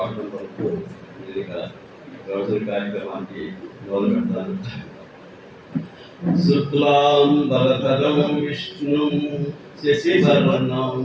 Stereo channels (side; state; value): both; identical; correlation 1.00